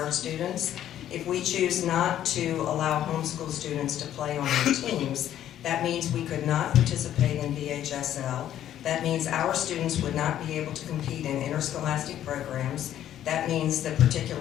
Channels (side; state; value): right; quieter; 11.4 dB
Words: students. If we choose not to allow homeschool students to play on our teams, that means we could not participate in VHSL. That means our students would not be able to compete in interscholastic programs. That means that